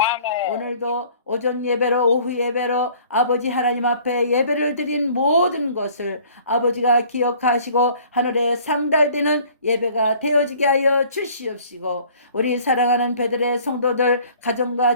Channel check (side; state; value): both; inverted; correlation -0.53